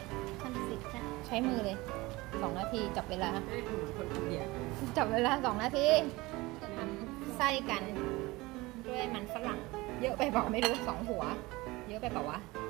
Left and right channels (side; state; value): left; quieter; 21.4 dB